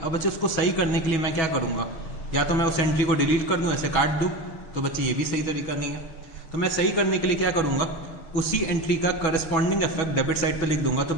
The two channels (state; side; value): late; right; 6.2 ms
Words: अब बच्चे उसको सही करने के लिए मैं क्या करूंगा, या तो मैं उस एंट्री को डिलीट कर दूं, ऐसे काट दूं। तो बच्चे ये भी सही तरीका नहीं है। तो मैं सही करने के लिए क्या करूंगा, उसी एंट्री का करस्पॉन्डिंग इफेक्ट डेबिट साइड पे लिख दूंगा। तो